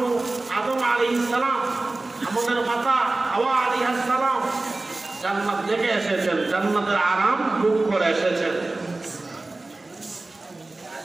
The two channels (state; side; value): quieter; left; 3.1 dB